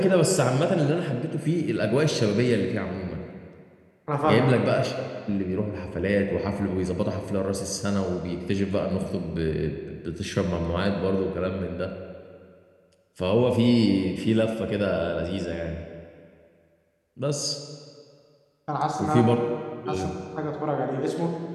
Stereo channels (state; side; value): identical; both; correlation 1.00